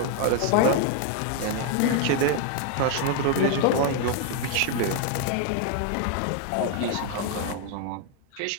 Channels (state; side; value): different; both; correlation 0.00